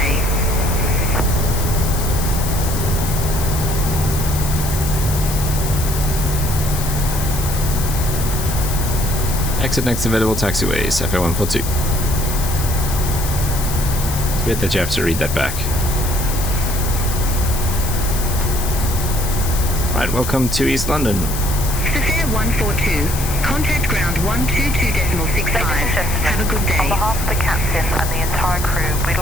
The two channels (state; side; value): noise; left; hiss, 7 dB below the sound